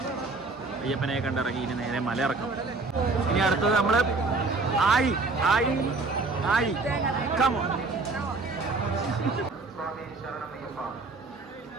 അയ്യപ്പനെ കണ്ടിറങ്ങി. ഇനി നേരെ മലയിറക്കം. ഇനി അടുത്തത് നമ്മൾ ആയി ആയി ആയി കമോ.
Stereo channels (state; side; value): quieter; left; 3.7 dB